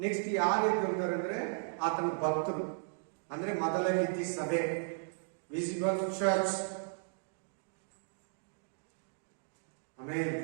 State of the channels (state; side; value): silent; left; digital silence